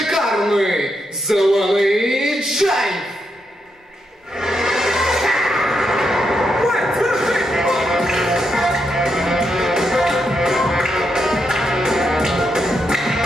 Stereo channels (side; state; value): both; normal; correlation 0.82